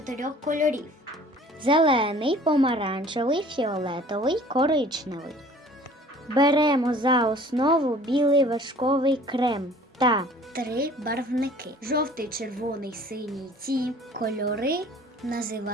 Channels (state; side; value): normal; both; correlation 0.50